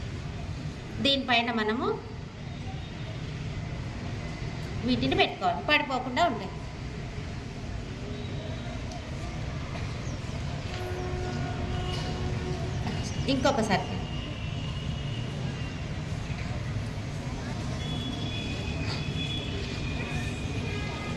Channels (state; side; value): identical; both; correlation 1.00